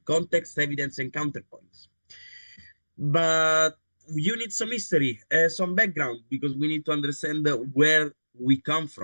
context, evidence, and counterpoints. But you need some history, some background, because we need to understand where we come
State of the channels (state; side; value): inverted; both; correlation -1.00